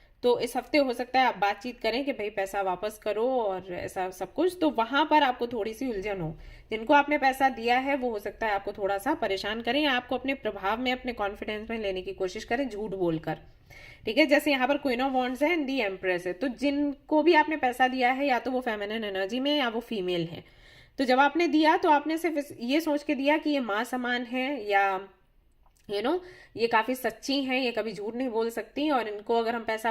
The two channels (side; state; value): both; identical; correlation 1.00